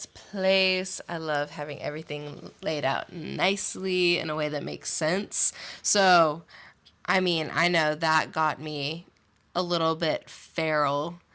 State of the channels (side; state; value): both; identical; correlation 1.00